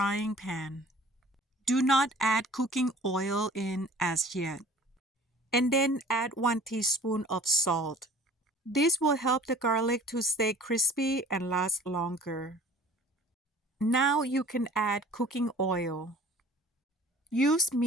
pan. Do not add cooking oil in as yet. And then add 1 teaspoon of salt. This will help the garlic to stay crispy and last longer. Now you can add cooking oil. Use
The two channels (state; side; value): normal; both; correlation 0.49